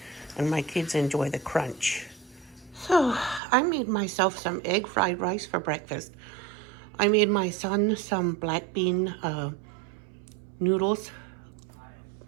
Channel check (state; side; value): drops out; left; at 3.4 s